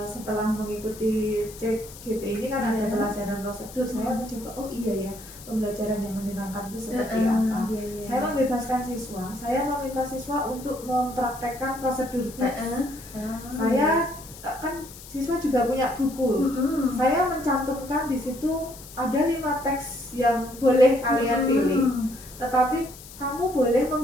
Setelah mengikuti CGP ini kan ada pelajaran prosedur, saya mencoba pembelajaran yang menyenangkan itu seperti apa. Saya membebaskan siswa, saya meminta siswa untuk mempraktekkan prosedur teks. Saya kan siswa juga punya buku. Saya mencantumkan di situ ada 5 teks yang boleh kalian pilih. Tetapi kamu boleh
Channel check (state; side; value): noise; left; hiss, 17 dB below the sound